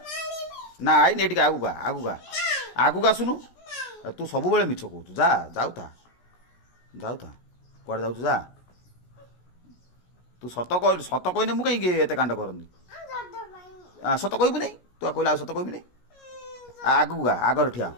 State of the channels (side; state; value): right; late; 17 ms